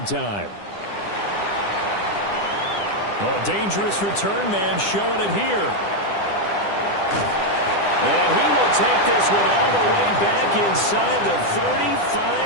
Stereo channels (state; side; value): late; right; 10 ms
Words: Oh, dangerous return man showing it here. And he will take this one all the way back inside the